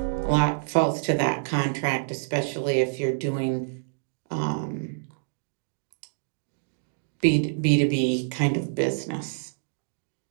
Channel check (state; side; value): silent; left; digital silence